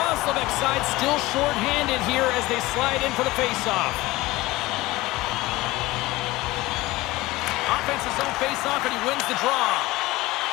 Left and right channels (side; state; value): right; quieter; 19.6 dB